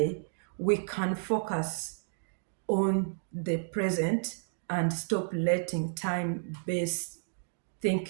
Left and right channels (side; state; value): left; silent; digital silence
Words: we can focus on the present and stop letting time-based